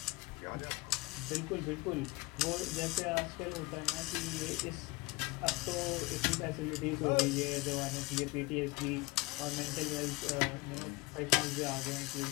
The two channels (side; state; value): right; quieter; 23.1 dB